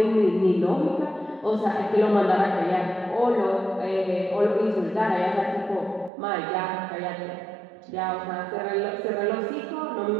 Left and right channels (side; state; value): left; drops out; at 6.1 s